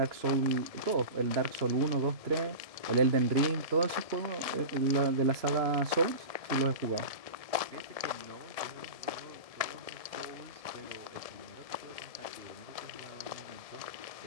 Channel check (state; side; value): late; left; 1.7 ms